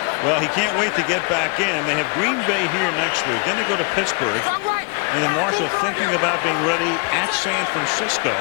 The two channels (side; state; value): right; quieter; 31.9 dB